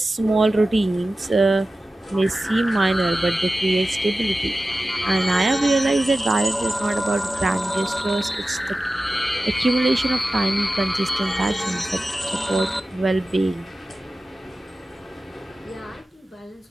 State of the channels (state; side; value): normal; both; correlation 0.95